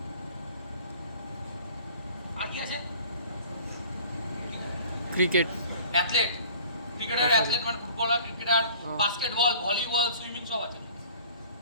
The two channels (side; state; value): both; inverted; correlation -0.48